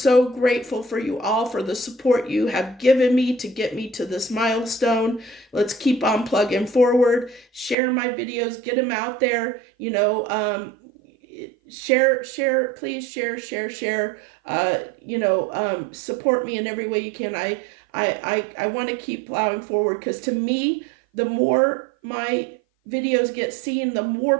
grateful for you all for the support you have given me to get me to this milestone. Let's keep on plugging forward. Share my videos, get them out there. Share, please share. Support me in every way you can. I want to keep plowing forward because to me, the more my videos get seen, the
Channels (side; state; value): left; drops out; at 7.8 s